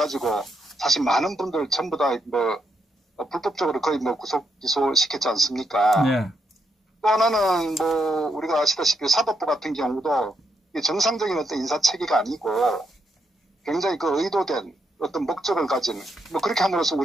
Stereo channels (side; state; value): both; normal; correlation 0.79